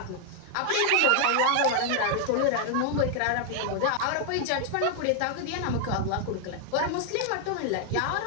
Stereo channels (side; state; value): both; different; correlation 0.00